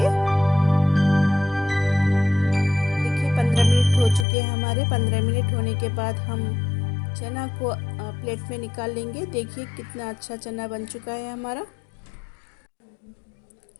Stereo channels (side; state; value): right; drops out; at 4.2 s